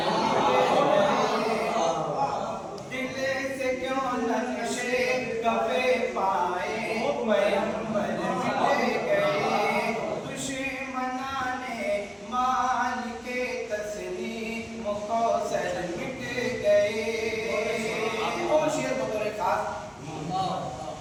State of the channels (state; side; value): identical; both; correlation 1.00